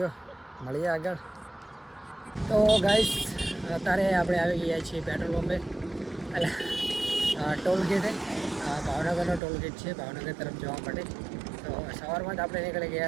મળીએ આગળ. તો ગાઈસ અત્યારે આપણે આવી ગયા છીએ પેટ્રોલ પંપે, એટલે ટોલ ગેટે. ભાવનગરનો ટોલ ગેટ છે ભાવનગર તરફ જવા માટે. તો સવારમાં જ આપણે નીકળી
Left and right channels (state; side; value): drops out; left; at 9.4 s